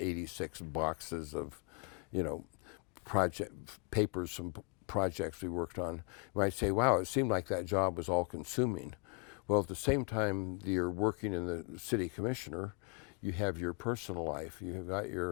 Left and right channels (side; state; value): right; quieter; 32.6 dB